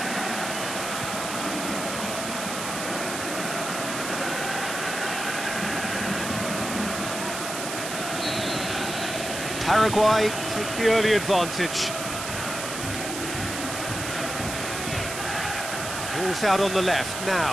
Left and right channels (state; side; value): noise; right; hiss, 6 dB below the sound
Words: Paraguay take the early advantage. Ball's out on the left